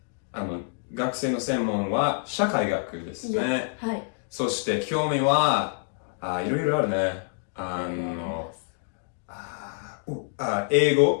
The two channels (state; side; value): silent; right; digital silence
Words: 学生の専門は社会学ですね。はい。そして興味は、いろいろあるね。英